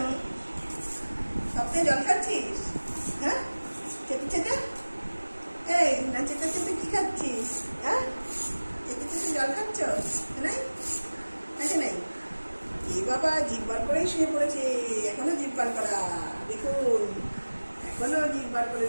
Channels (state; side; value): inverted; both; correlation -1.00